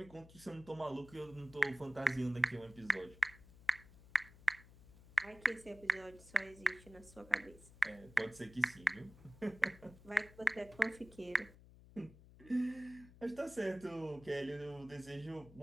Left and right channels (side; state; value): left; noise; hum, 21 dB below the sound